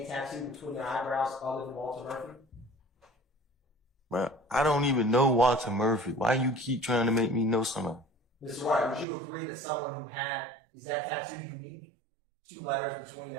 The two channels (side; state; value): left; drops out; at 9.1 s